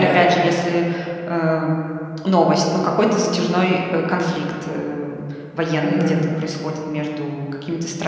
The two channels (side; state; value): both; identical; correlation 1.00